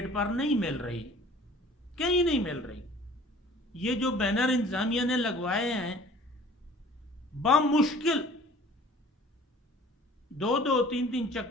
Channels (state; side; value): normal; both; correlation 0.49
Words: पर नहीं मिल रही, कहीं नहीं मिल रही। ये जो बैनर इंतजामिया ने लगवाए हैं, बामुश्किल 2-2, 3-3